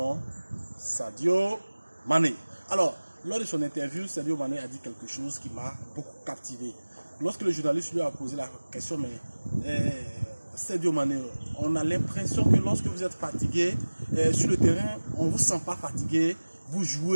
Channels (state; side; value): inverted; both; correlation -1.00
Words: Sadio Mané. Alors, lors de son interview, Sadio Mané a dit quelque chose qui m'a beaucoup captivé. Lorsque le journaliste lui a posé la question, mais Sadio Mané, on a l'impression que lorsque vous êtes fatigué sur le terrain, on ne vous sent pas fatigué, vous